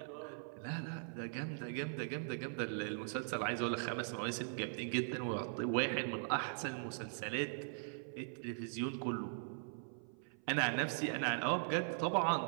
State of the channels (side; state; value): left; silent; 51 dB below the other